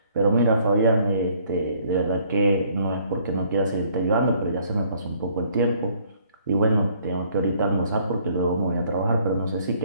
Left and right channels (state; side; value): inverted; both; correlation -0.62